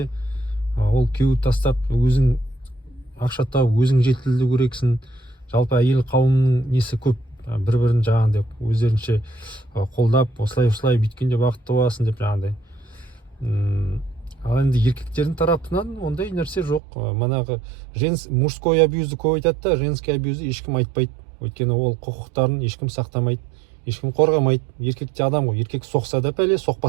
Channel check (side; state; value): left; drops out; at 16.8 s